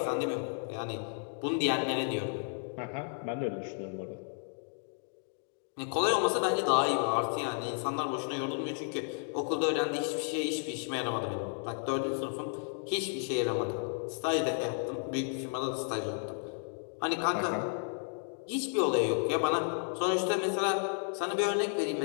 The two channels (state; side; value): silent; right; 56 dB below the other